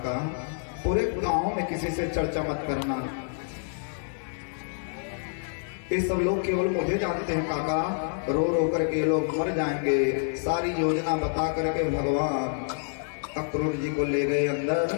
पूरे गांव में किसी से चर्चा मत करना, ये सब लोग केवल मुझे जानते हैं काका, रो रो करके लोग मर जाएंगे। सारी योजना बता करके भगवान अक्रूर जी को ले गए अंदर।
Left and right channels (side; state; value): right; silent; digital silence